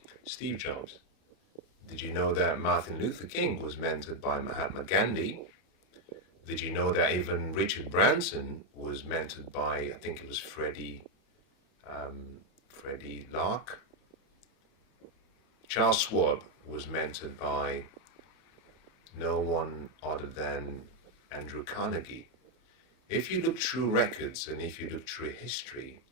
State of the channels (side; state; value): right; late; 31 ms